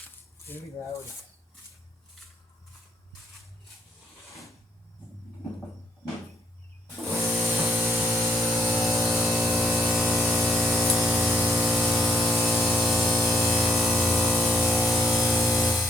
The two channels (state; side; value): normal; both; correlation 0.73